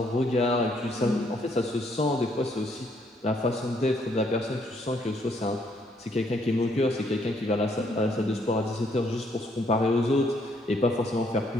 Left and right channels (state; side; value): normal; both; correlation 0.70